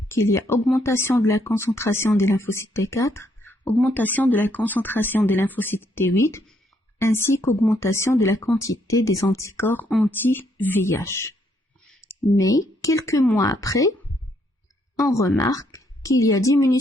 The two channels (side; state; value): both; normal; correlation 0.72